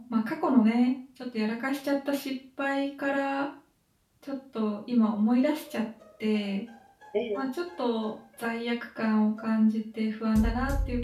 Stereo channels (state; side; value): identical; both; correlation 1.00